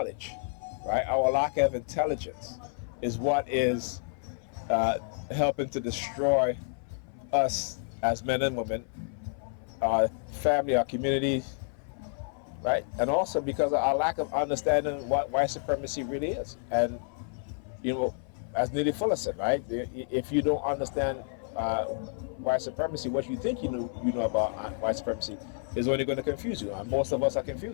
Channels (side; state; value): right; silent; 58 dB below the other